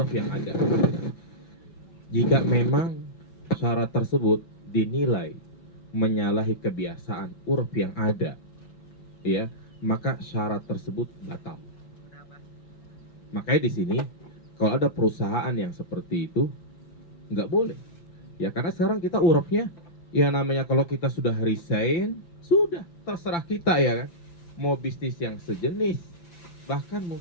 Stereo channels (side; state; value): right; late; 5.9 ms